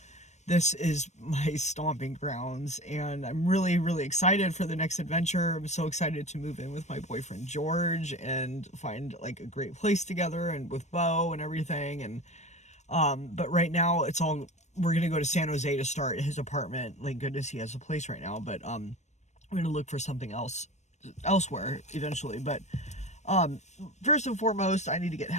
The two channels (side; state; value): right; late; 0.34 ms